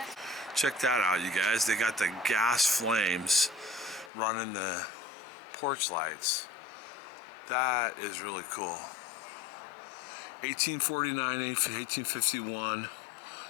Check that out, you guys. They got the gas flames running the porch lights. That is really cool. 1849, 1851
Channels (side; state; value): right; drops out; at 4.1 s